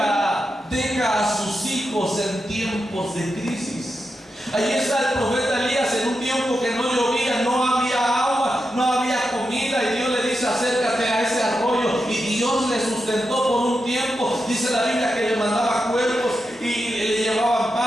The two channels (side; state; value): both; normal; correlation 0.88